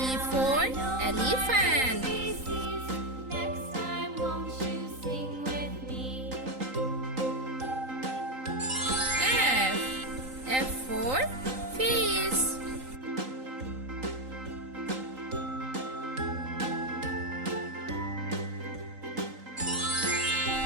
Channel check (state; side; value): late; left; 3.9 ms